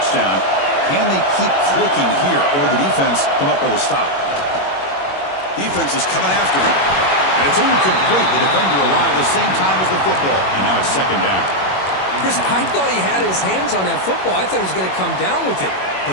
Can they keep clicking here? Or will the defense come up with a stop? Defense is coming after him. And it's incomplete. The defender arrived the same time as the football. And now it's second down. Chris, I thought he had his hands on that football. I thought he was going to come down with it.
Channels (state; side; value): late; right; 21 ms